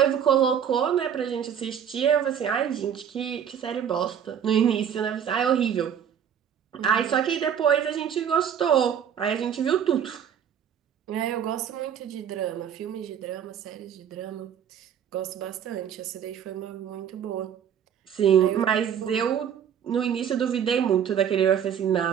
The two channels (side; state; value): left; quieter; 8.6 dB